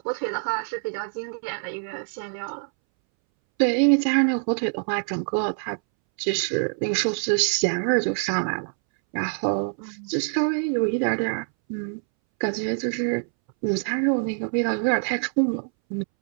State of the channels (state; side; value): silent; left; 62 dB below the other